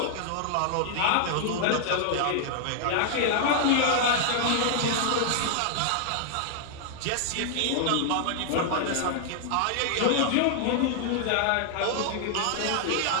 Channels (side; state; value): both; different; correlation 0.00